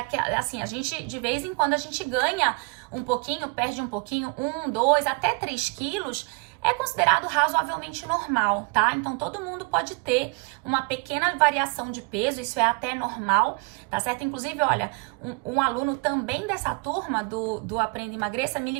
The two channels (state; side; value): quieter; left; 32.2 dB